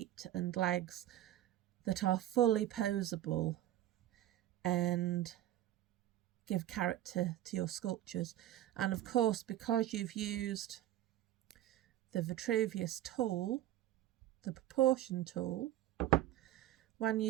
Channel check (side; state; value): left; quieter; 13.2 dB